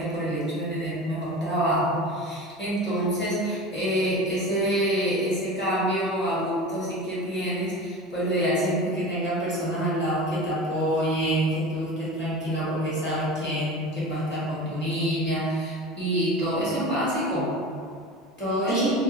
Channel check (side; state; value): both; normal; correlation 0.33